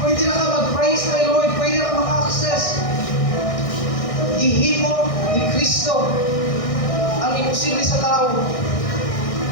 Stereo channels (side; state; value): right; late; 1.6 ms